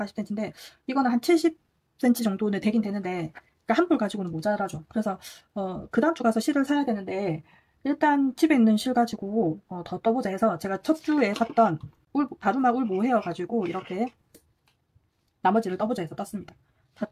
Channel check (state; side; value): identical; both; correlation 1.00